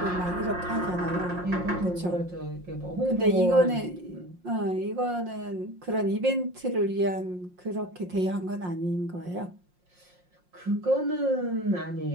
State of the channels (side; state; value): left; late; 5.6 ms